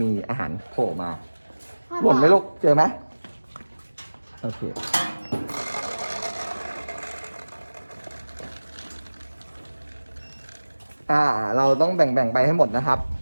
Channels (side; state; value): both; inverted; correlation -1.00